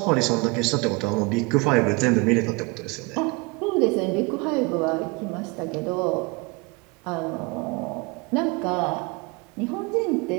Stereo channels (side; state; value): left; quieter; 27.3 dB